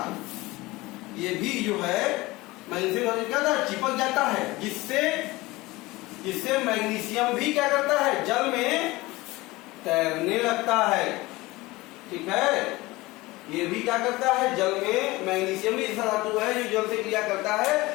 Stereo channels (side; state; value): right; quieter; 20.7 dB